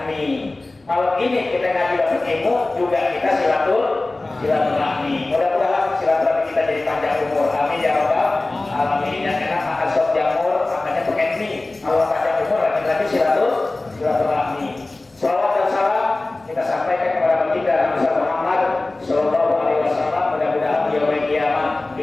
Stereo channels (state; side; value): quieter; right; 3.0 dB